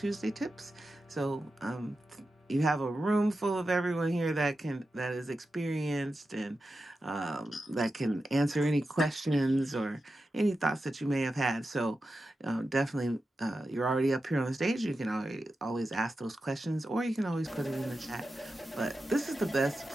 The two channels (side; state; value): both; normal; correlation 0.91